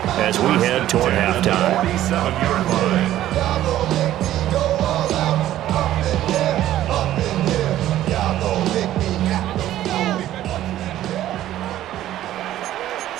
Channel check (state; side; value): quieter; left; 13.2 dB